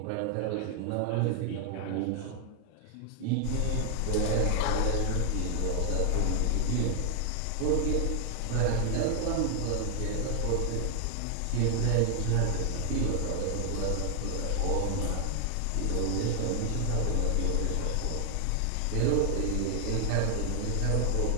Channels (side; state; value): both; different; correlation 0.00